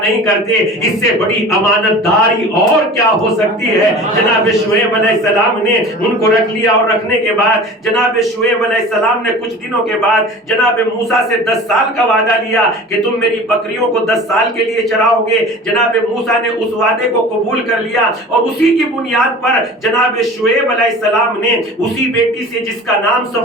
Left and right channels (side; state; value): both; normal; correlation 0.39